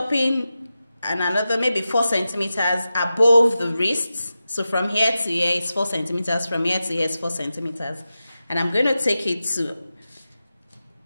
and another maybe 4 centimeters above the wrist. So from here to here is 4 centimeters. From here to here is 4 centimeters. And I'm going to take it to,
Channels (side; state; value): both; inverted; correlation -0.92